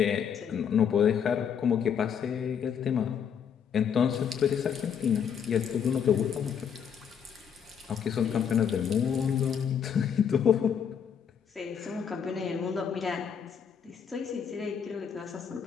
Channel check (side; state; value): right; quieter; 7.7 dB